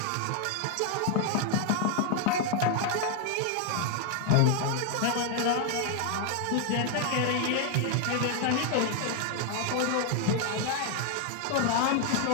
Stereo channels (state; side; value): different; both; correlation 0.00